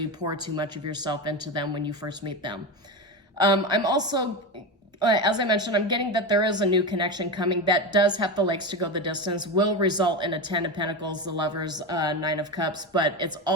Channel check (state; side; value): normal; both; correlation 0.19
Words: pour too much of yourself into them when you first meet them. I'm also, as I mentioned, I'm getting that there is a new connection coming that does have the legs to go the distance, will result in a 10 of Pentacles, the Lovers, 9 of Cups, but it's